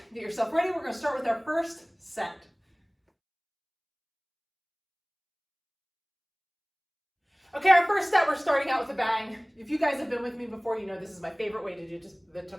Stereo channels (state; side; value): identical; both; correlation 1.00